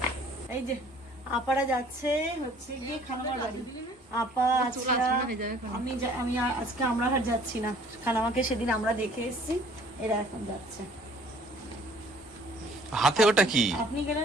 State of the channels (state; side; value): normal; both; correlation 0.55